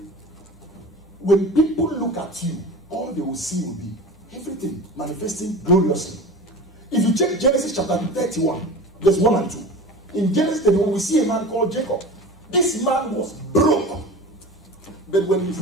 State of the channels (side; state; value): both; normal; correlation 0.34